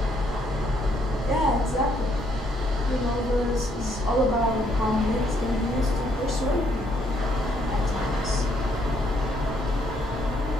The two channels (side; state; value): both; normal; correlation 0.70